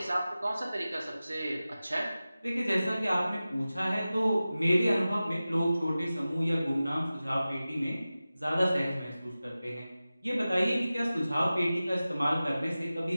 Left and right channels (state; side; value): inverted; both; correlation -0.96